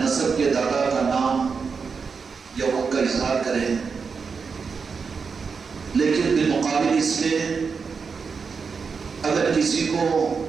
کے دادا کا نام یا ان کا اظہار کریں. لیکن بالمقابل اس کے اگر کسی کو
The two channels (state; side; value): quieter; left; 5.4 dB